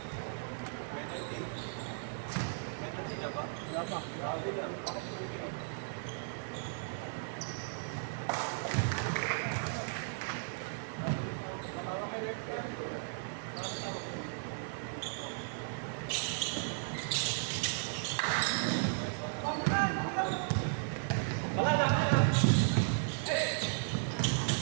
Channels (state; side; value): silent; left; digital silence